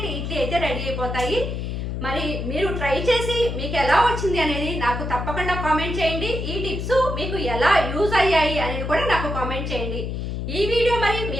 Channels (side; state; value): left; noise; hum, 4 dB below the sound